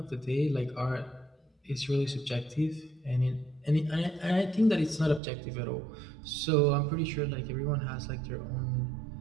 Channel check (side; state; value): left; drops out; at 5.2 s